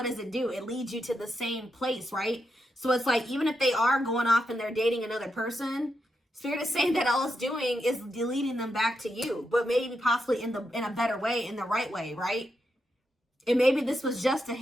does it do? It leads you to the same place, right? So it's like, even if they are going off and they're dating another person, Spirit is saying that all it's doing is leading them back to you, but maybe possibly in a better way, in the right way, right? And maybe this was just a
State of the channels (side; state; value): both; normal; correlation 0.84